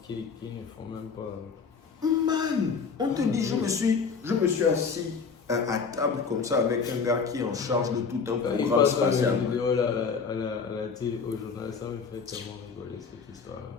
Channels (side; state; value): right; quieter; 5.5 dB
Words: qui ne font même pas. Man, on te dit, je me suis assis à table comme ça avec un gars qui est en charge de tout un programme spatial. Il vidéo là, à la télé, au journal, ça me fait tellement rigoler cette histoire.